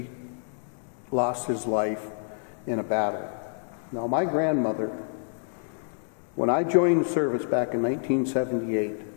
lost his life in a battle. Now, my grandmother, when I joined the service back in 1978,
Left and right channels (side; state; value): right; silent; digital silence